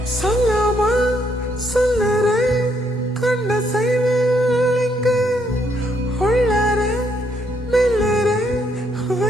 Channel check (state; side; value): normal; both; correlation 0.73